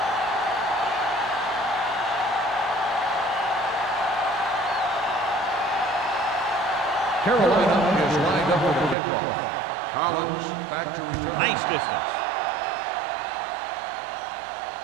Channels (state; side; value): drops out; left; at 9.0 s